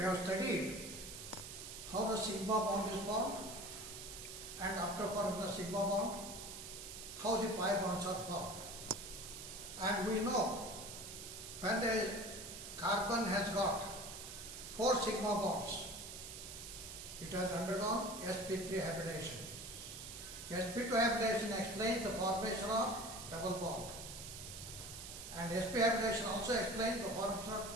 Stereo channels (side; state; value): right; noise; hiss, 10 dB below the sound